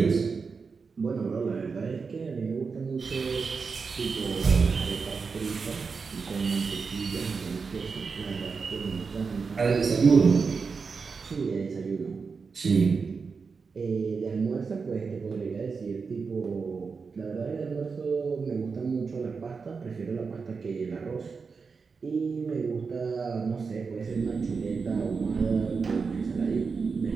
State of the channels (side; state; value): left; quieter; 5.0 dB